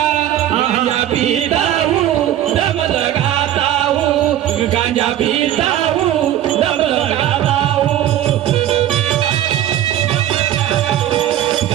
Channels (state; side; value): quieter; left; 12.2 dB